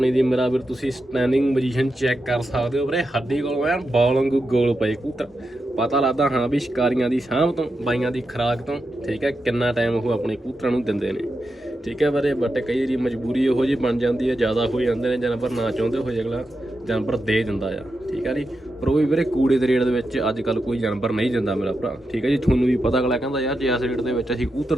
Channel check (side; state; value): both; normal; correlation 0.88